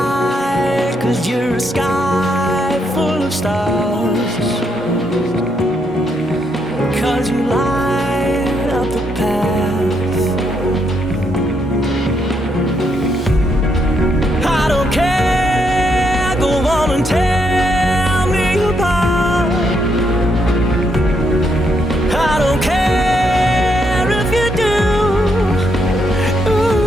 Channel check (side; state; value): both; normal; correlation 0.77